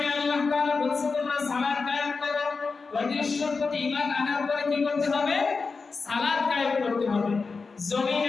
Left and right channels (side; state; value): right; quieter; 4.5 dB